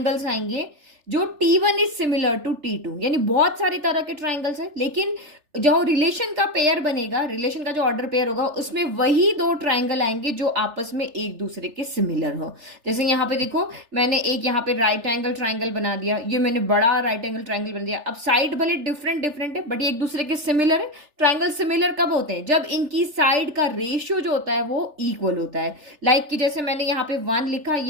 आएंगे जो T1 is similar to T2, यानी बहुत सारी तरह के ट्राइंगल्स है, लेकिन जो रिलेशन का पेयर बनेगा, रिलेशन का जो ऑर्डर पेयर होगा उसमें वही दो ट्राइंगल आएंगे जो आपस में एक दूसरे के सिमिलर हो। जैसे यहाँ पे देखो, मैंने एक यहाँ पे राइट एंगल ट्राइंगल बना दिया, ये मैंने बड़ा राइट एंगल ट्राइंगल बना दिया। अब साइड भले डिफरेंट है बट ये एक दूसरे के सिमिलर है। ट्राइंगल सिमिलर कब होते हैं, जब इनकी साइड का रेशियो जो होता है वो इक्वल होता है। लाइक कि जैसे मैंने यहाँ पे 1 लिखा,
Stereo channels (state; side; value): late; left; 3.4 ms